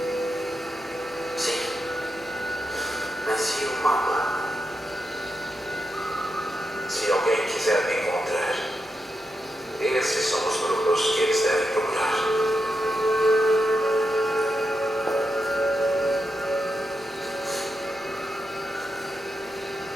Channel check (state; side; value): normal; both; correlation 0.86